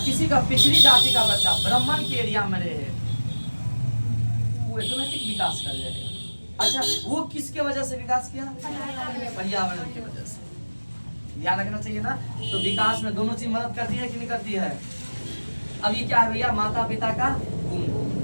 किसी का पिछड़ी जाति का बच्चा ब्राह्मण के एरिया में रहे, वो ऑटोमेटिक विकास कर जाएगा। अच्छा, वो किसके वजह से विकास किया? पर्यावरण की वजह से। ध्यान रखना चाहिए ना। तो विकास में दोनों चीज मदद करती है कि नहीं करती है। अब ये क्या है भैया, माता पिता का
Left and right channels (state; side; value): inverted; both; correlation -1.00